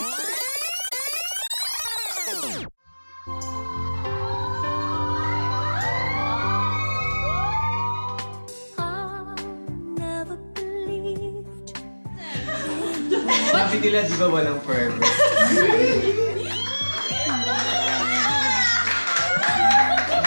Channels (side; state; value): both; inverted; correlation -1.00